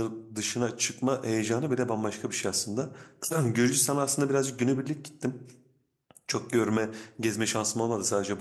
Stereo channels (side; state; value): both; identical; correlation 1.00